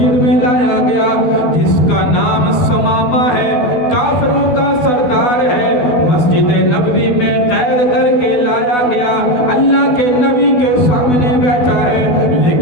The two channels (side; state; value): right; late; 12 ms